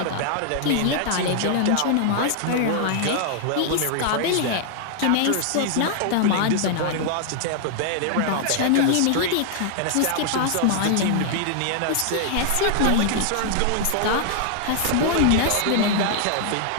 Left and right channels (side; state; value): both; different; correlation 0.00